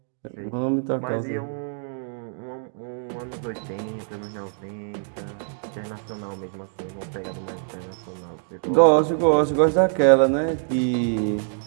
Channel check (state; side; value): silent; left; digital silence